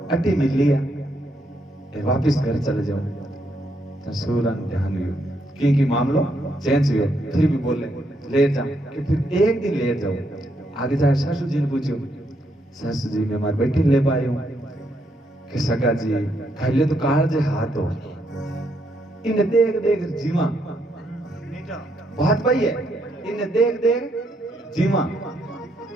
अटी मिल लिया वापिस घर चले जाओ सूरन ध्यान हुई क्योंकि मामलो चेंज हुए फिर भी बोले ले जाओ कि फिर एक दिन ले जाओ आगे जाए सासू जी ने पूछो सासू जी मैं हमारी बेटी ले पाई हूँ कि सगा जी पहले तो काल जे हाथ हो इन देख जीवा बात भाई है इन देख जीवा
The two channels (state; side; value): normal; both; correlation 0.76